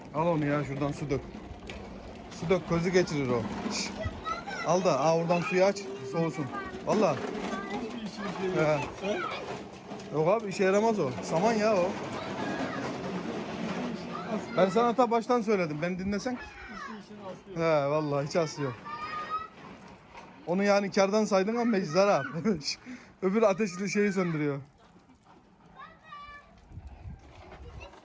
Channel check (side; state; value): both; identical; correlation 1.00